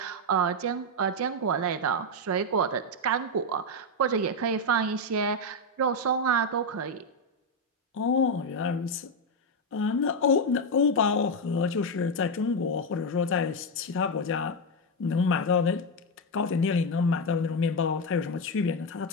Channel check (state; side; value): normal; both; correlation 0.06